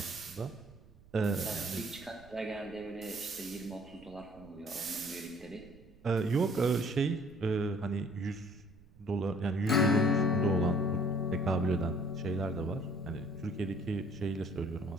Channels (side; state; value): right; noise; rumble, 24 dB below the sound